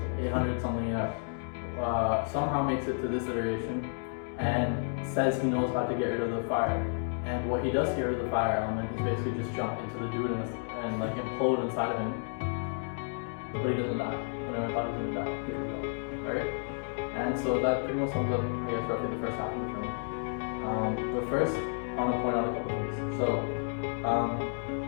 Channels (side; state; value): right; silent; digital silence